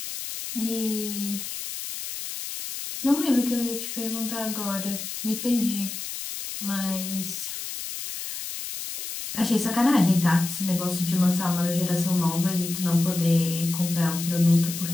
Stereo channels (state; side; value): noise; left; hiss, 7 dB below the sound